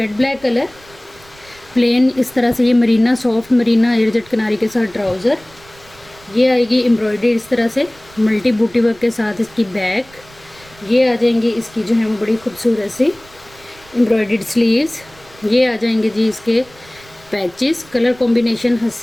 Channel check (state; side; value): noise; right; rumble, 25 dB below the sound